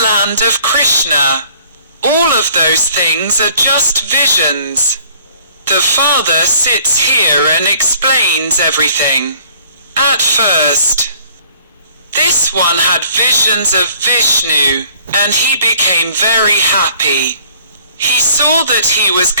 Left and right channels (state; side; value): inverted; both; correlation -0.55